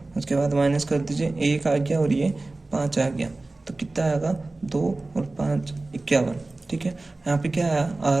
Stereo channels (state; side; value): quieter; left; 3.1 dB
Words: उसके बाद माइनस कर दीजिए, 1 आ गया और ये 5 आ गया, तो कितना आएगा 2 और 5 51, ठीक है। यहाँ पे क्या आया